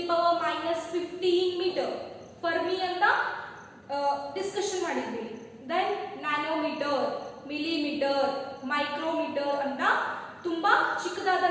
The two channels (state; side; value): identical; both; correlation 1.00